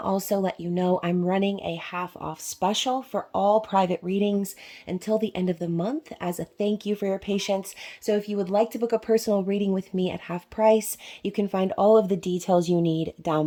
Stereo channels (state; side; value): identical; both; correlation 1.00